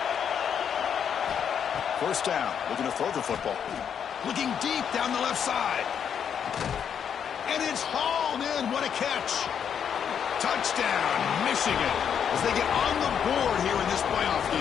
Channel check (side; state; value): right; quieter; 8.0 dB